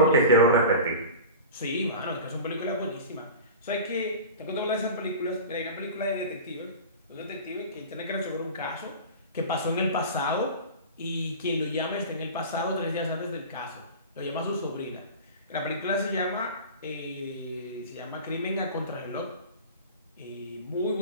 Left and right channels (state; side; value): inverted; both; correlation -0.33